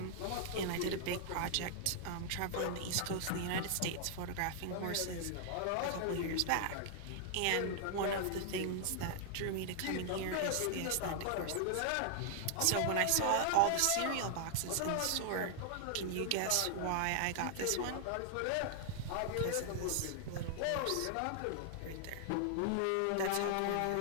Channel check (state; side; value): different; both; correlation 0.00